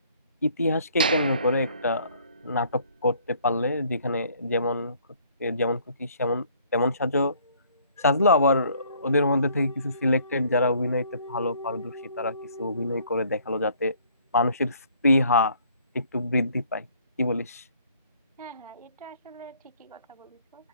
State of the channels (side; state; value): both; inverted; correlation -0.60